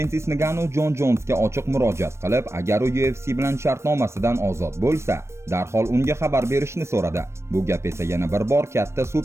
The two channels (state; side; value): late; left; 0.13 ms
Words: Ngannou Jon Jonsga ochiq murojaat qilib, agar u UFC bilan shartnomasidan ozod bo'lsa, darhol unga xabar berishni so'radi. Bu gap esa yana bir bor katta